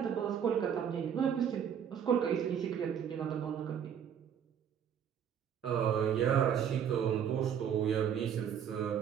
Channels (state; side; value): quieter; left; 8.4 dB